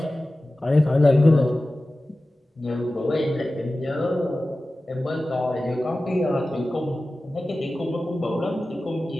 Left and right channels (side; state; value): both; normal; correlation 0.95